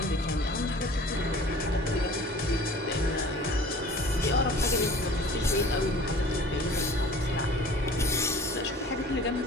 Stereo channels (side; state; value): both; normal; correlation 0.45